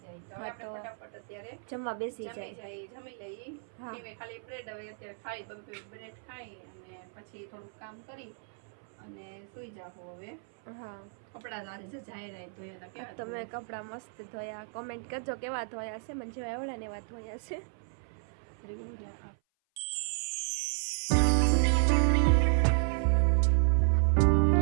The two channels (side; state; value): left; silent; 56 dB below the other